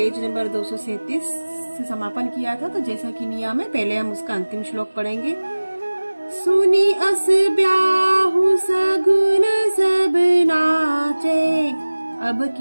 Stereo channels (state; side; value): inverted; both; correlation -1.00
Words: नंबर 237 से समापन किया था। तो जैसा कि नियम है, पहले हम उसका अंतिम श्लोक पढ़ेंगे। सुनी अस ब्याहु सगुन सब नाचे, अब